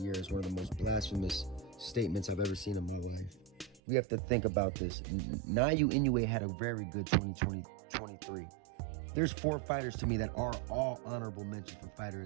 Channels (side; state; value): left; drops out; at 3.8 s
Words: Year is one of the most blasphemous statements I've ever seen in my life. We have to think about this. Naoya Inoue had a very good 2023. There's 4 fighters to me that are all honorable mentions for Fighter